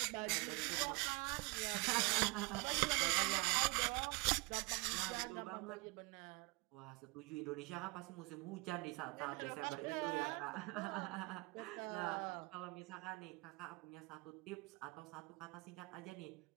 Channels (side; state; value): left; quieter; 26.7 dB